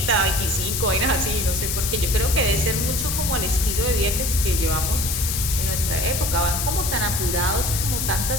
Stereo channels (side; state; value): left; noise; hiss, 1 dB below the sound